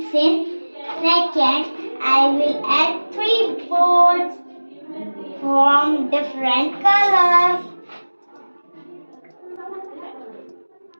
in. Second I will add 3 boards from different colors.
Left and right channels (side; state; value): both; inverted; correlation -1.00